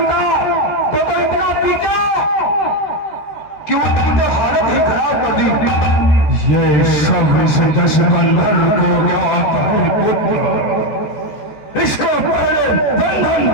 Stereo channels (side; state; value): right; late; 14 ms